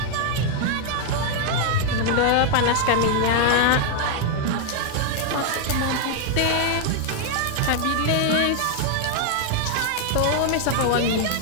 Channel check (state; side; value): different; both; correlation 0.00